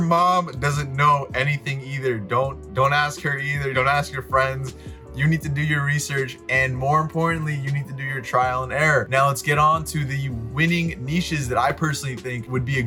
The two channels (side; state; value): both; identical; correlation 1.00